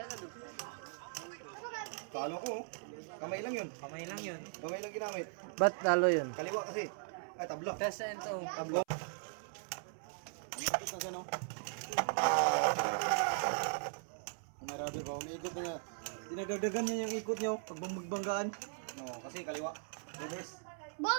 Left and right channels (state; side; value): silent; left; 52 dB below the other